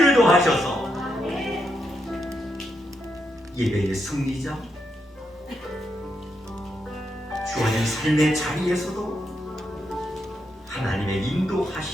더하셔서 예배의 승리자, 주어진 삶의 자리에서도 하나님의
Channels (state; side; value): normal; both; correlation 0.82